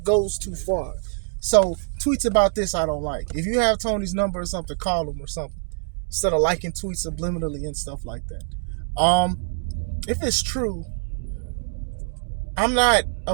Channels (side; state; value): left; silent; digital silence